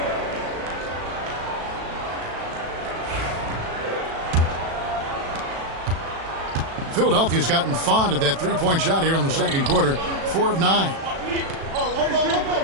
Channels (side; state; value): left; late; 36 ms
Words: Philadelphia's gotten fond of that three-point shot here in the second quarter. 4 of 9.